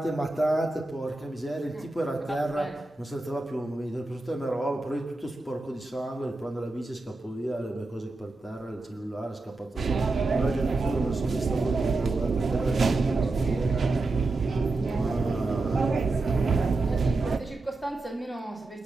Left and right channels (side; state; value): left; quieter; 3.1 dB